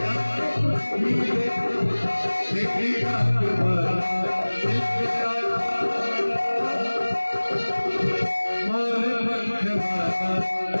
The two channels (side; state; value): both; inverted; correlation -1.00